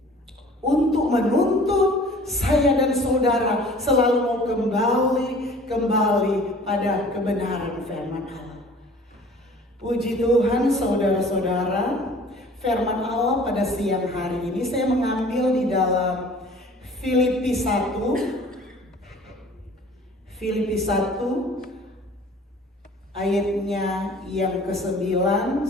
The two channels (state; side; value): normal; both; correlation 0.49